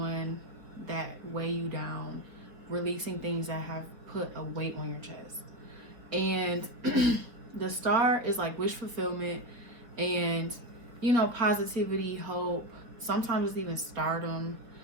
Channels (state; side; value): late; left; 4.1 ms